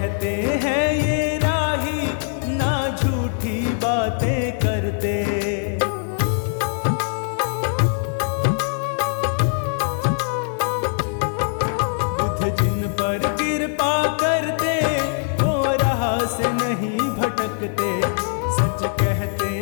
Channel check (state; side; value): silent; right; 56 dB below the other